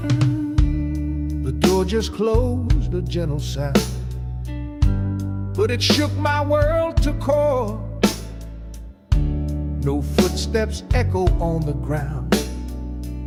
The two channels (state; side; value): identical; both; correlation 1.00